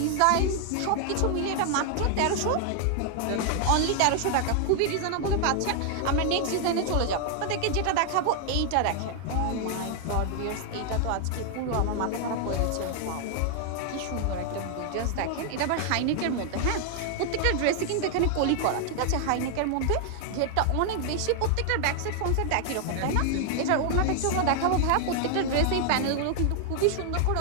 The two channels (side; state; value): both; different; correlation 0.00